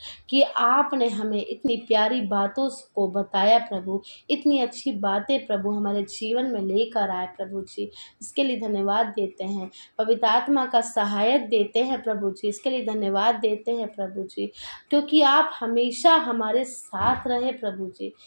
कि आपने हमें इतनी प्यारी बातों को बताया प्रभु, इतनी अच्छी बातें प्रभु हमारे जीवन में लेकर आए प्रभु जी। इसके लिए धन्यवाद देते हैं। पवित्र आत्मा का सहायक देते हैं प्रभु जी, इसके लिए धन्यवाद देते हैं प्रभु जी, क्योंकि आप हमेशा हमारे साथ रहे प्रभु जी।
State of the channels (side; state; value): both; inverted; correlation -1.00